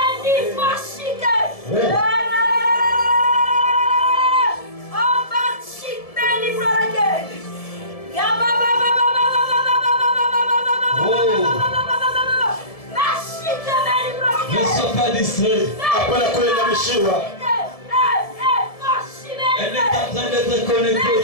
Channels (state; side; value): late; right; 1.7 ms